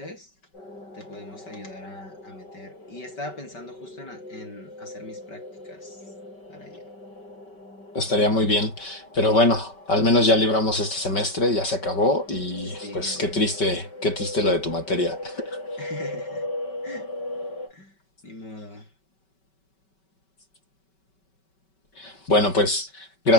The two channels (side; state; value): right; late; 5.2 ms